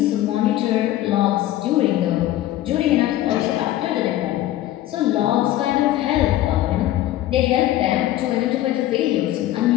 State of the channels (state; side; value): quieter; right; 14.2 dB